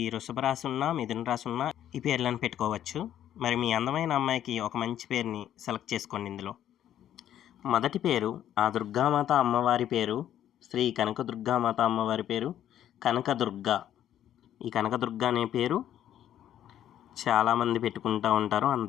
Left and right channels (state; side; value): quieter; right; 11.1 dB